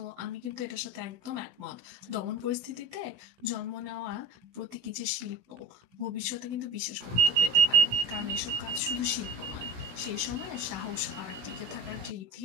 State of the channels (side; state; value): left; late; 16 ms